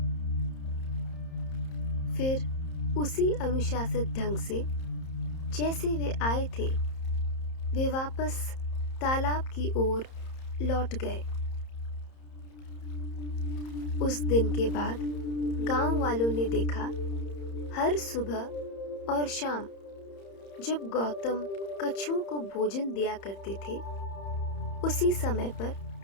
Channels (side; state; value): right; late; 30 ms